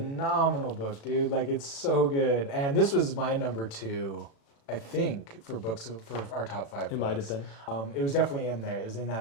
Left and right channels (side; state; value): right; late; 36 ms